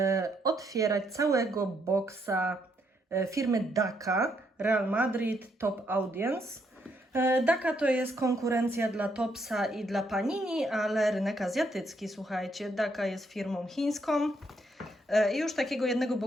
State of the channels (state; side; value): normal; both; correlation 0.74